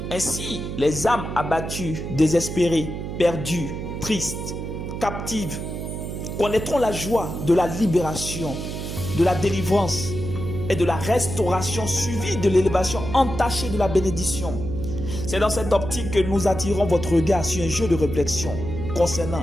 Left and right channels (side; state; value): right; noise; hum, 6 dB below the sound